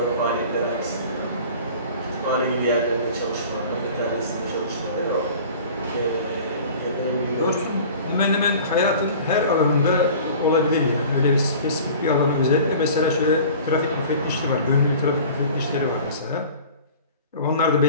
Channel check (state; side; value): inverted; both; correlation -0.43